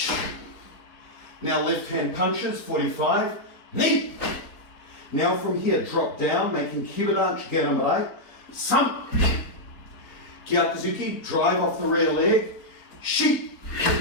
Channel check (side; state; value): right; late; 3.9 ms